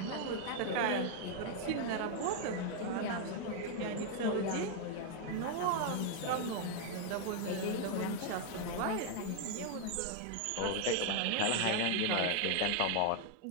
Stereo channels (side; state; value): both; different; correlation 0.00